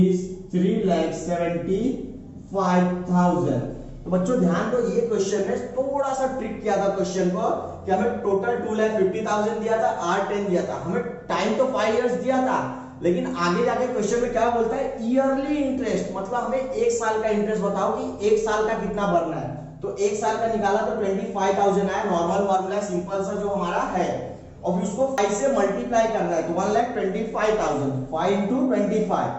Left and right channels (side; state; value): both; identical; correlation 1.00